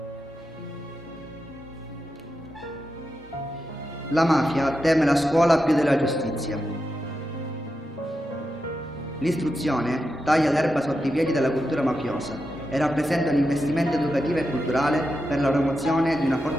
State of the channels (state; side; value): normal; both; correlation 0.88